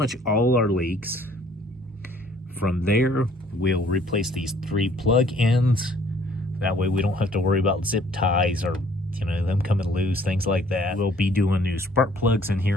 all our leaks. From there, we'll replace these three plug ends. That way we don't have to worry about zip ties or them coming loose, things like that. We'll be doing new spark plugs in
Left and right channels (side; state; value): both; normal; correlation 0.59